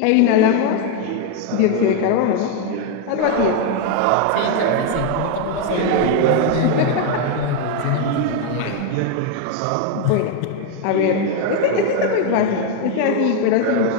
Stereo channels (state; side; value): different; both; correlation 0.01